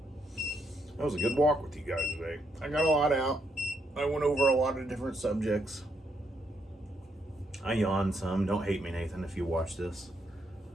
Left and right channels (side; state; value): both; normal; correlation 0.77